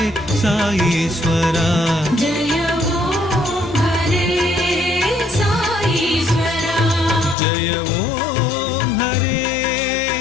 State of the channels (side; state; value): right; drops out; at 7.4 s